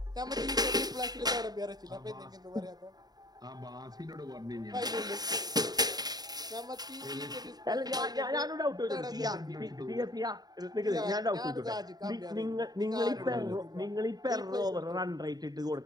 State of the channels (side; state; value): left; late; 0.19 ms